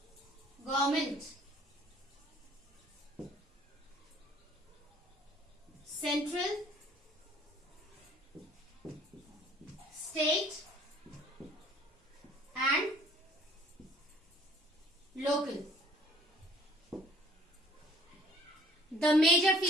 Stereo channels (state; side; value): normal; both; correlation 0.55